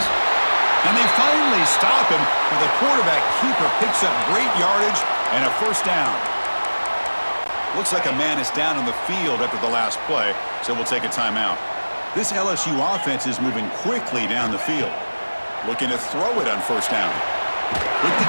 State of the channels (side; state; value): both; inverted; correlation -1.00